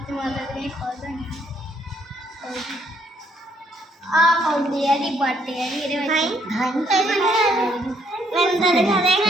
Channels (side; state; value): both; normal; correlation 0.69